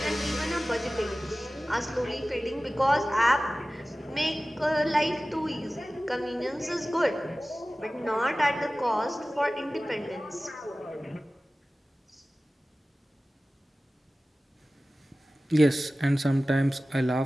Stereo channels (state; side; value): normal; both; correlation 0.97